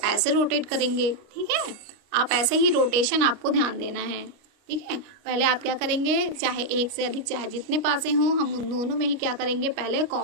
ऐसे रोटेट करेंगे। ठीक है, आप ऐसे ही रोटेशन आपको ध्यान देना है। ठीक है, पहले आप क्या करेंगे, चाहे एक से अधिक चाहे जितने पासे हों, हम उन दोनों में ही क्या करेंगे, पहले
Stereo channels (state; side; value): late; left; 29 ms